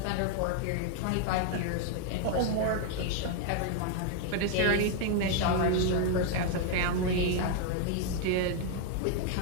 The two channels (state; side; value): different; both; correlation 0.00